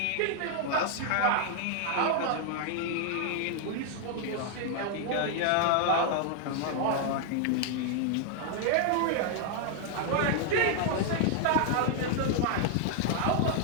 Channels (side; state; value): both; different; correlation 0.00